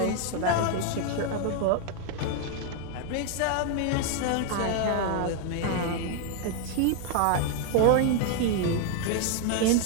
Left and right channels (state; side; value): different; both; correlation 0.00